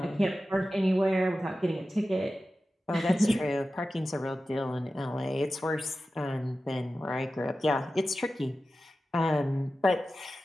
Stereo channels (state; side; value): normal; both; correlation 0.94